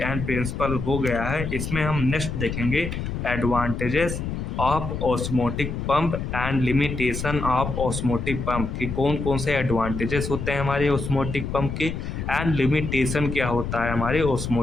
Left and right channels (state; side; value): noise; left; rumble, 4 dB below the sound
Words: एंड प्रिंसिपल हो गया है। इसमें हम नेक्स्ट देखेंगे advantages of osmotic pump and limitation of osmotic pump कि कौन कौन से एडवांटेजेस होते हैं हमारे ऑस्मोटिक पंप के एंड लिमिटेशन क्या होता है हमारे